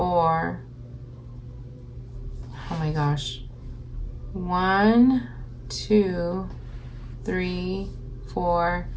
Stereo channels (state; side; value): identical; both; correlation 1.00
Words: Oh my gosh. 1, 2, 3, 4,